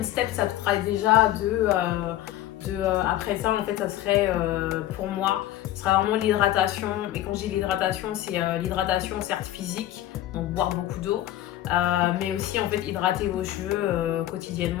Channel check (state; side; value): quieter; right; 13.7 dB